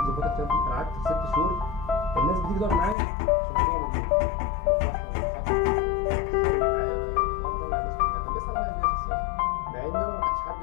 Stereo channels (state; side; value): drops out; right; at 3.0 s